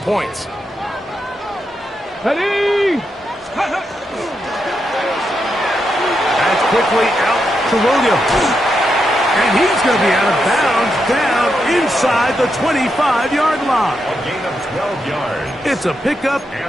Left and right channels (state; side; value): normal; both; correlation 0.84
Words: Ready. That's quickly out to Williams. And he's going to be out of bounds down inside the 25-yard line. A gain of 12 yards. It's a pickup